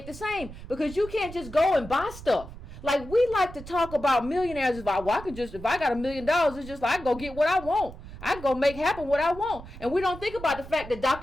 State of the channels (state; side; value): noise; right; rumble, 14 dB below the sound